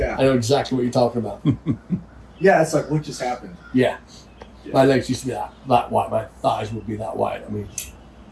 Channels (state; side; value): identical; both; correlation 1.00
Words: I know exactly what you're talking about. Yeah, it's like, what just happened? Yeah. Yeah. My legs used to be that wide. My thighs would be that wide. I mean,